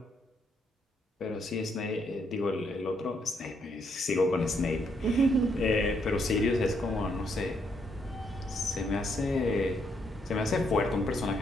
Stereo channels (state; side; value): normal; both; correlation 0.75